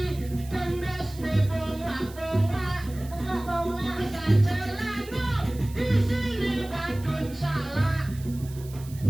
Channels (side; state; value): right; noise; hiss, 20 dB below the sound